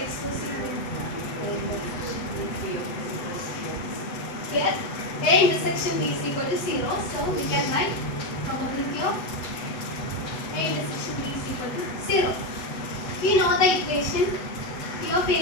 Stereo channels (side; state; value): right; late; 8.1 ms